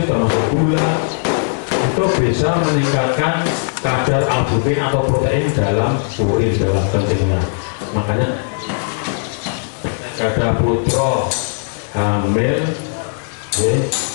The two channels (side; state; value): right; silent; digital silence